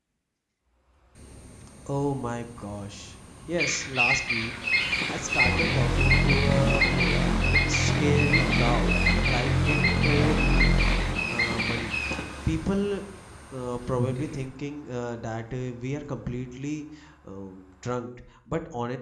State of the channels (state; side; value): identical; both; correlation 1.00